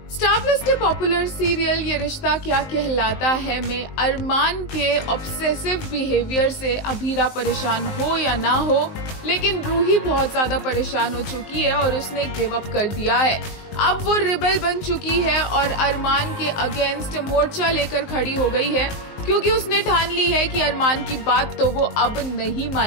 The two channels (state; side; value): late; right; 19 ms